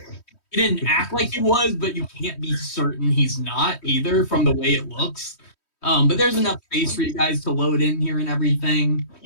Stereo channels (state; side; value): late; right; 3.1 ms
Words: didn't act like he was, but you can't be certain he's not either from the way it looks. But there's enough space for you guys to load in here and everything.